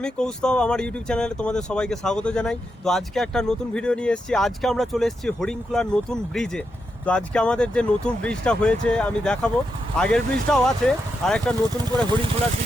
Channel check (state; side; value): normal; both; correlation 0.85